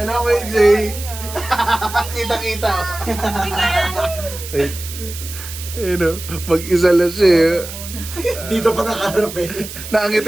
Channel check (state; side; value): noise; right; hiss, 11 dB below the sound